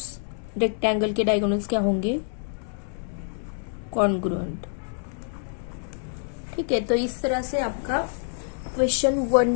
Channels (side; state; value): right; silent; digital silence